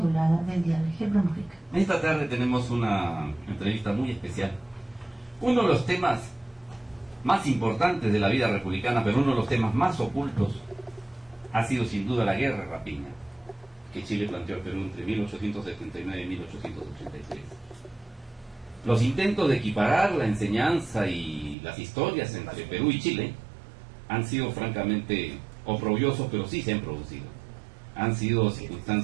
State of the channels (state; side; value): drops out; left; at 21.6 s